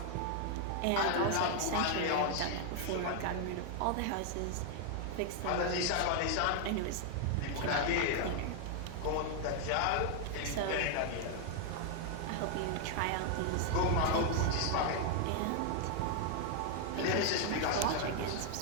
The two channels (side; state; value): both; different; correlation 0.00